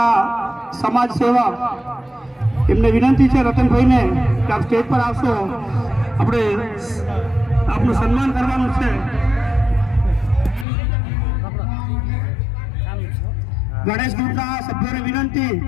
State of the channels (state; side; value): drops out; right; at 10.7 s